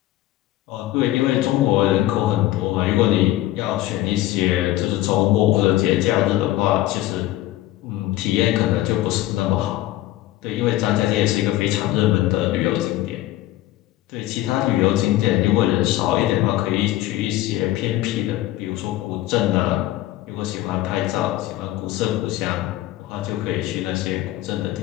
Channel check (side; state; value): right; quieter; 15.5 dB